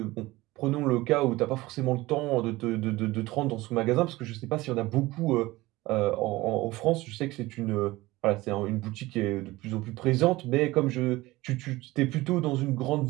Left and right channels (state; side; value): quieter; left; 19.5 dB